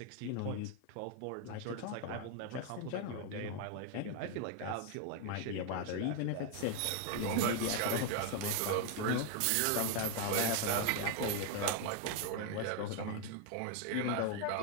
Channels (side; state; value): both; different; correlation 0.01